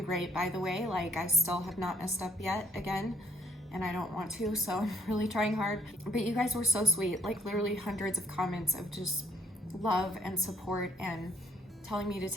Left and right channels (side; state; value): both; normal; correlation 0.67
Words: great, by the way. Like, I still have not messed up yet again, and I don't want to, so I'm really trying hard. But you guys were so sweet, like literally hundreds of comments of just love and support, and telling me to